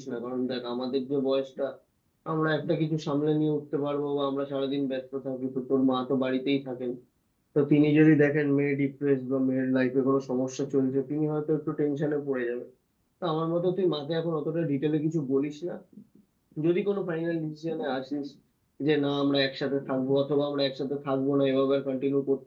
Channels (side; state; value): both; identical; correlation 1.00